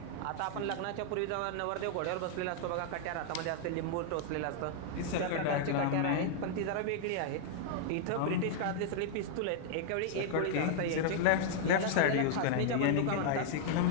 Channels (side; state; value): both; different; correlation -0.01